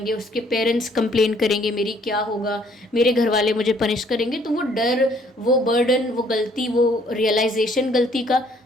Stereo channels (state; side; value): normal; both; correlation 0.63